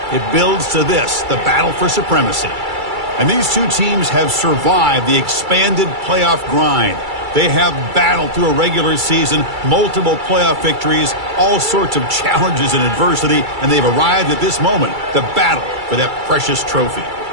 it builds to this, the battle for supremacy. And these two teams have survived the expanded playoff grind. They have battled through a regular season, multiple playoff victories, all sorts of challenges and adversity, and they've arrived at this moment, the battle for that precious trophy.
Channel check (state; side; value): late; left; 2.3 ms